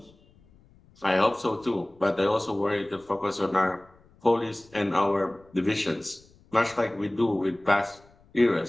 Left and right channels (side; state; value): left; noise; rumble, 29 dB below the sound